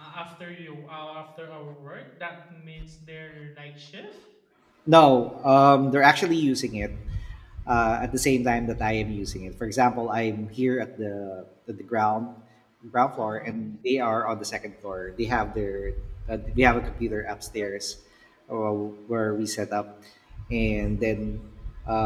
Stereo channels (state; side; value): identical; both; correlation 1.00